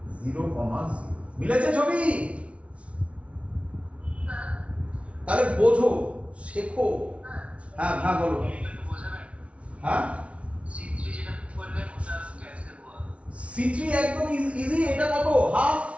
0,0। মিলেছে ছবি? তাহলে বোঝো, শেখো। হ্যাঁ হ্যাঁ বলো। একটু বোঝাবেন? হ্যাঁ C3 যেটা বললেন ওটা ক্যান্সেল হওয়া। C3 একদম ইজি, এটা কত হাফ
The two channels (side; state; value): left; late; 0.062 ms